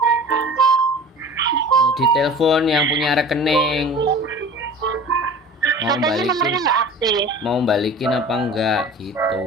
Ditelepon yang punya rekening. Katanya nomornya nggak aktif. Mau balikin apa enggak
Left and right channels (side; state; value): both; normal; correlation 0.41